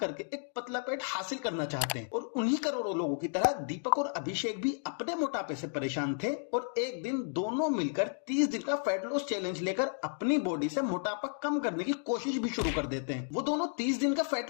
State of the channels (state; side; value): silent; right; digital silence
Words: एक पतला पेट हासिल करना चाहते हैं। और उन्हीं करोड़ों लोगों की तरह दीपक और अभिषेक भी अपने मोटापे से परेशान थे और एक दिन दोनों मिलकर 30 दिन का फैट लॉस चैलेंज लेकर अपनी बॉडी से मोटापा कम करने की कोशिश भी शुरू कर देते हैं। वो दोनों 30 दिन का